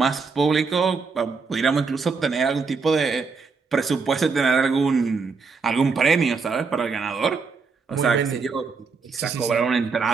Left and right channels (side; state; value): left; quieter; 4.8 dB